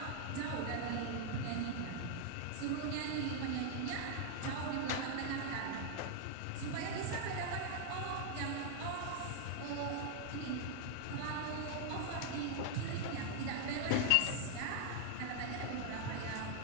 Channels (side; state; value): both; different; correlation 0.00